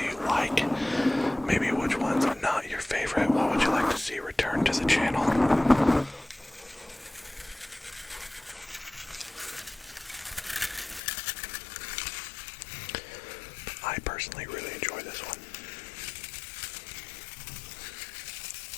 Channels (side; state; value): right; drops out; at 11.0 s